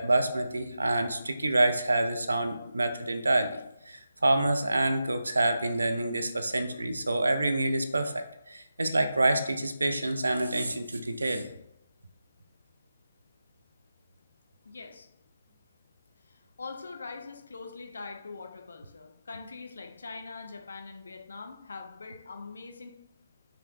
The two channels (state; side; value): inverted; both; correlation -0.91